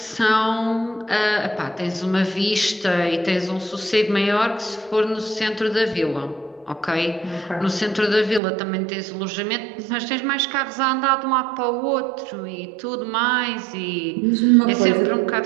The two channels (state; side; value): drops out; left; at 8.4 s